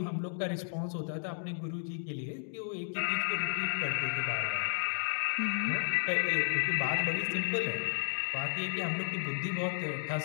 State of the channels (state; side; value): silent; right; digital silence